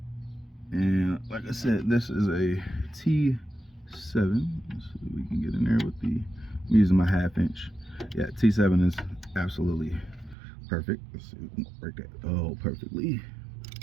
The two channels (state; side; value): drops out; left; at 10.4 s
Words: And like I said, this is a T7. Let's see if we can get in there with I'm using my 1/2 inch. Yeah, T7 is absolutely perfect. Let's see if we can break that. Oh, perfectly.